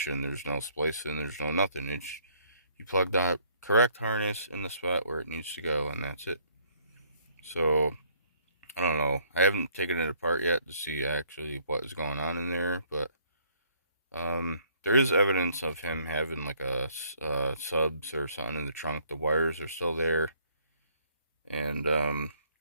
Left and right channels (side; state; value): both; inverted; correlation -0.64